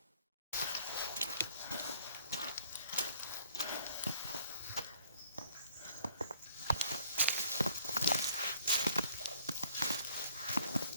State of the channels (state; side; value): inverted; both; correlation -0.59